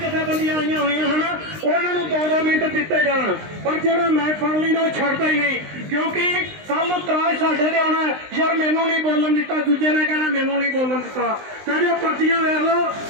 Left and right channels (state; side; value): late; left; 19 ms